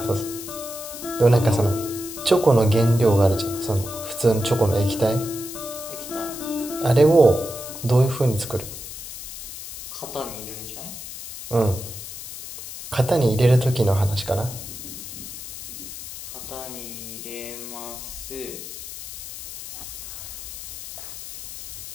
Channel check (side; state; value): left; noise; hiss, 10 dB below the sound